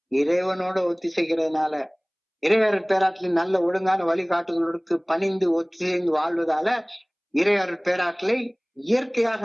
இறைவனோட ஒத்திசைக்கிறதுனால. இறையருள் பேராற்றலின் நல்ல ஒழுங்கான வழிகாட்டுதலுக்கு பணிந்து ஒத்துழைந்து வாழ்வதால இறையருள் பேராற்றலை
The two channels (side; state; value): both; identical; correlation 1.00